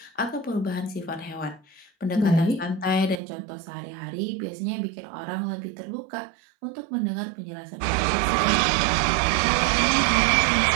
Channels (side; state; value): left; drops out; at 3.2 s